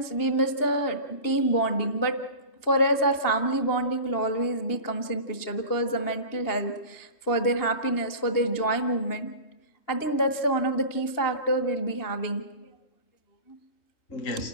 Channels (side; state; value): right; late; 2.8 ms